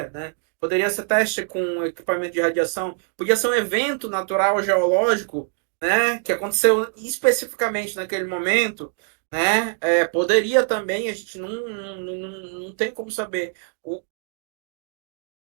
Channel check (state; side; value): silent; left; 63 dB below the other